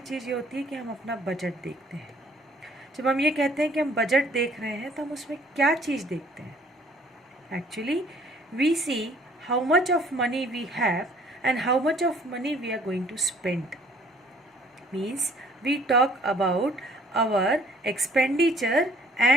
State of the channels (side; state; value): both; normal; correlation 0.57